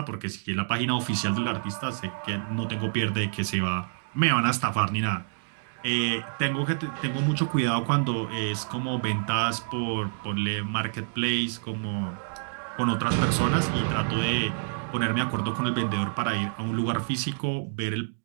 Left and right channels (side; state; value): left; silent; digital silence